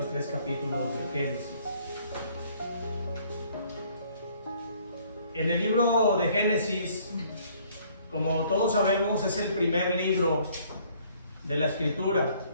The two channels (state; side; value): inverted; both; correlation -0.61